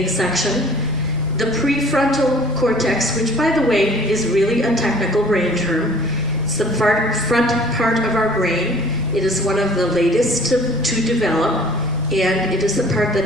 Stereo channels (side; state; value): right; noise; rumble, 22 dB below the sound